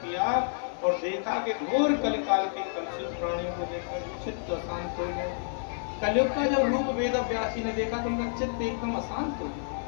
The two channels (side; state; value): right; silent; digital silence